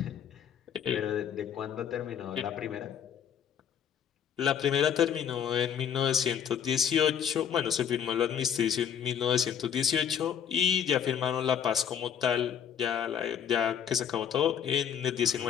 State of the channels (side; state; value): right; quieter; 8.5 dB